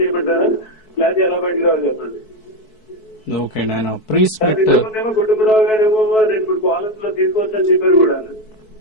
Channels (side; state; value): right; late; 4.6 ms